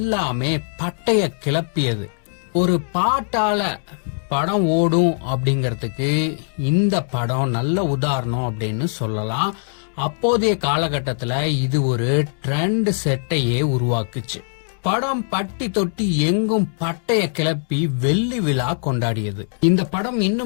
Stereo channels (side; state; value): right; silent; digital silence